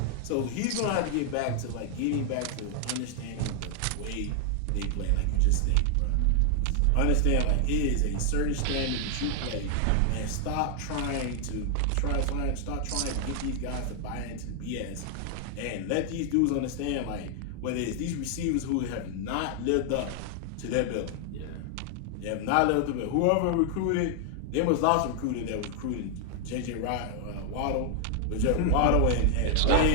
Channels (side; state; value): both; different; correlation 0.00